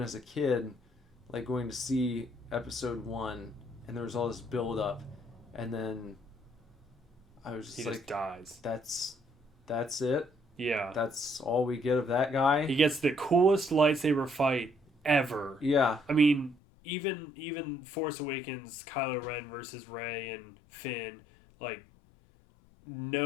as a kid, like going to see episode 1, and there was all this build up, and then I was just he like, just dies. That's it? Yeah. That's all we get of that guy? He gets the coolest lightsaber fight ever. Yeah. I mean, even Force Awakens, Kylo Ren versus Rey and Finn, like,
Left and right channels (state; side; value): drops out; right; at 16.6 s